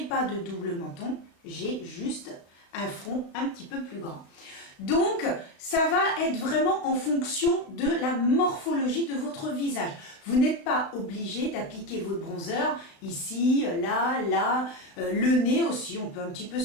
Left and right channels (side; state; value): right; late; 35 ms